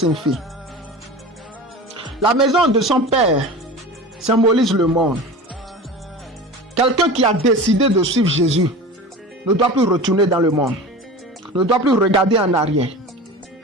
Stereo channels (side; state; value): both; normal; correlation 0.34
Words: La maison de son père symbolise le monde. Quelqu'un qui a décidé de suivre Jésus ne doit plus retourner dans le monde, ne doit plus regarder en arrière.